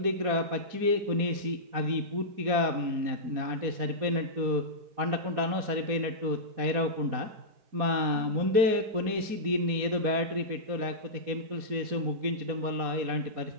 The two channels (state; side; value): late; left; 4.2 ms